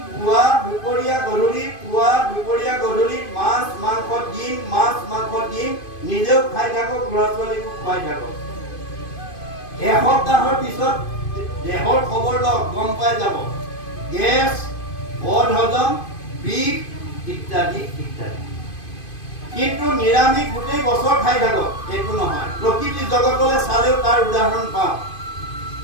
পুৱা দুপৰীয়া গধূলি, পুৱা দুপৰীয়া গধূলি মাছ মাংস ডিম, মাছ মাংস ডিম নিজেও খাই থাকক, ল'ৰা ছোৱালীকো খুৱাই থাকক। এসপ্তাহৰ পিছত দেহৰ খবৰ লওক, গম পাই যাব গেছ, বদ হজম, বিষ ইত্যাদি ইত্যাদি। কিন্তু নিৰামিষ গোটেই বছৰ খাই থাকক, এইটো নহয়। প্ৰকৃতি জগতলৈ চালেও তাৰ উদাহৰণ পাওঁ।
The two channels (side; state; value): right; late; 2.5 ms